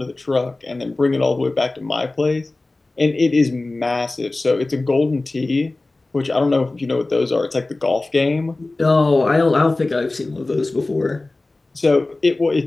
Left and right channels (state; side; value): quieter; right; 3.1 dB